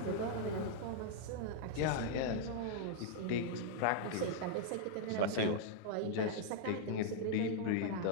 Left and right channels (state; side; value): different; both; correlation -0.01